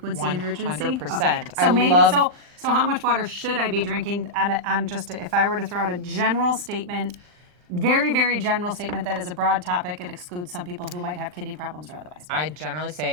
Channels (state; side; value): late; left; 39 ms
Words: and urgency? 100%. Okay. So so how much water should I be drinking on just if I were to throw out a general statement, very, very general statement that is a broad topic, it excludes some people who might have kidney problems or otherwise. I generally